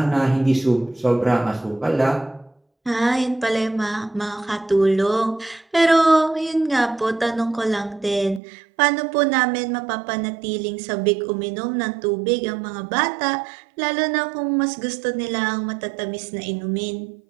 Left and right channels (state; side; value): drops out; left; at 8.4 s